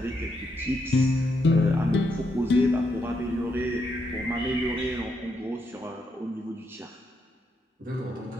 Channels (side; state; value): both; normal; correlation 0.79